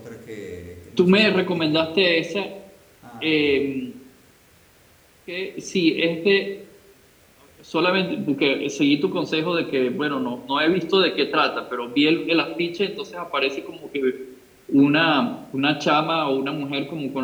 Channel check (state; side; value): identical; both; correlation 1.00